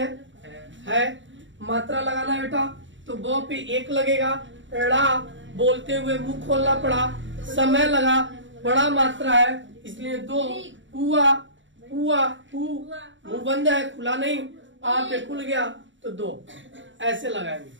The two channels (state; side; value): late; left; 0.55 ms